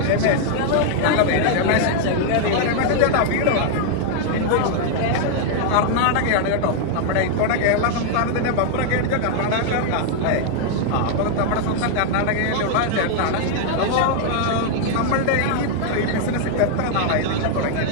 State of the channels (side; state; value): both; different; correlation 0.00